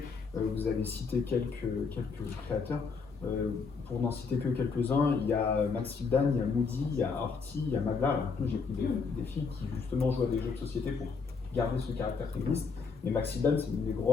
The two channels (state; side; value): quieter; right; 5.0 dB